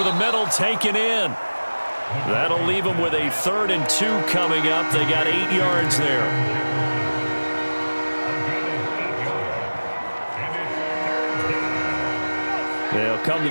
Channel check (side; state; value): both; inverted; correlation -1.00